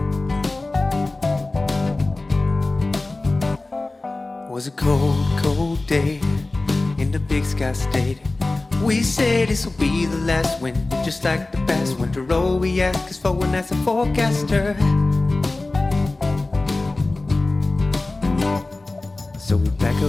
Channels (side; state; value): right; quieter; 3.1 dB